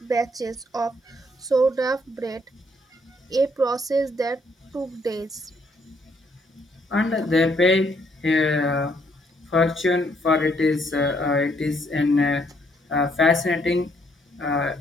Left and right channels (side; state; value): both; normal; correlation 0.70